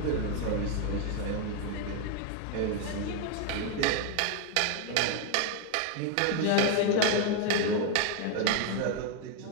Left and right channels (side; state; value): both; different; correlation 0.01